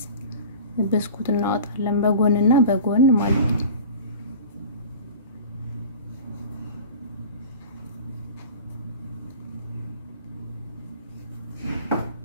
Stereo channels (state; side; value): inverted; both; correlation -0.39